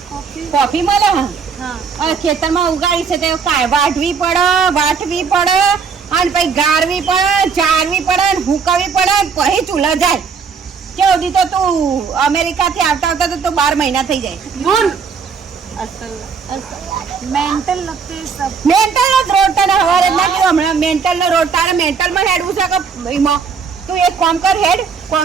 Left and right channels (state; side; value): quieter; left; 5.8 dB